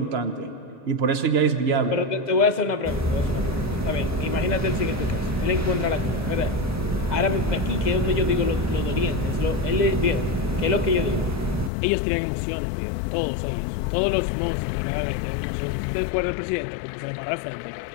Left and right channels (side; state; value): right; drops out; at 11.7 s